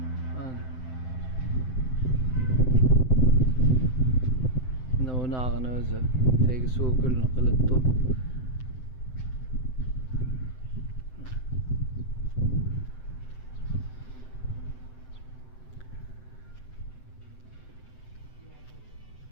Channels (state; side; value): late; right; 7.8 ms